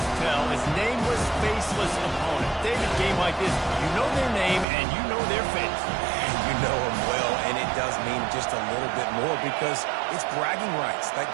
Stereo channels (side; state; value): left; drops out; at 4.7 s